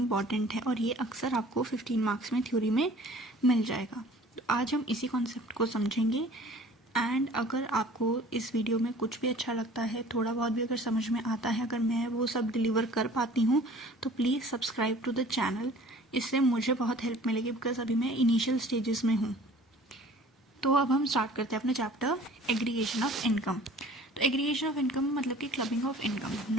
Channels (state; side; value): normal; both; correlation 0.49